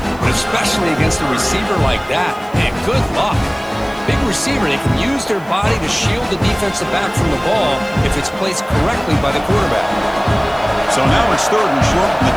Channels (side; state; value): left; noise; hiss, 27 dB below the sound